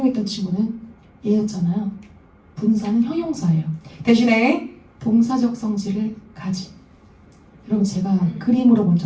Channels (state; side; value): identical; both; correlation 1.00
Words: 친구는 얘였잖아요. 분사는 형용사예요. 대신에 동사적 성질을 가진. 여러분 제가 그림으로 먼저